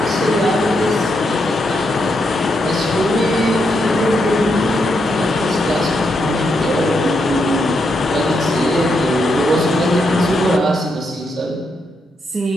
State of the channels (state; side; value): normal; both; correlation 0.81